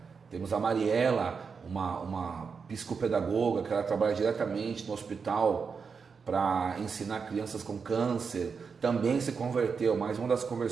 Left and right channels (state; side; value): quieter; left; 5.6 dB